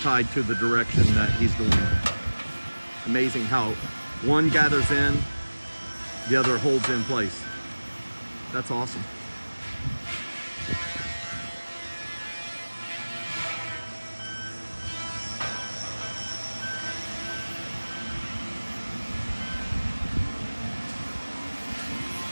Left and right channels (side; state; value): both; inverted; correlation -1.00